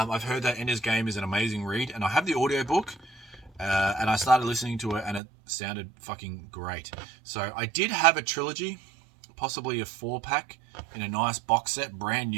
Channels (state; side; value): drops out; left; at 5.2 s